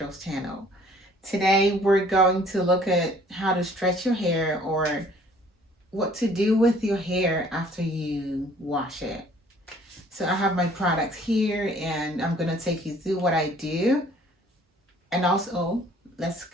channel. Today we're going to look at how to stretch your hair or what to do with your hair after you wash it. So I have my products here and I'm going to take you through what I do and also let's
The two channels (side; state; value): both; normal; correlation 0.56